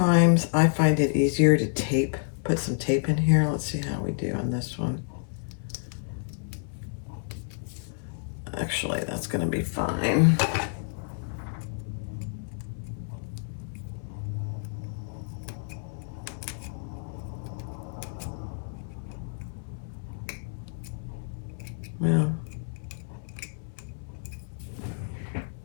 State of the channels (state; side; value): silent; right; 58 dB below the other